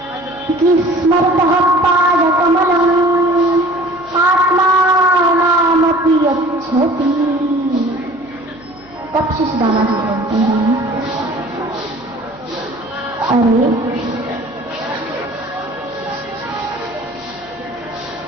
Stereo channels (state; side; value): noise; right; hum, 26 dB below the sound